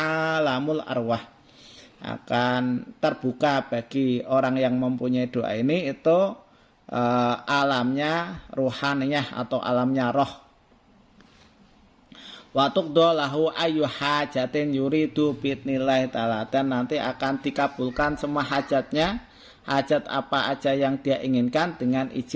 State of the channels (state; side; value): identical; both; correlation 1.00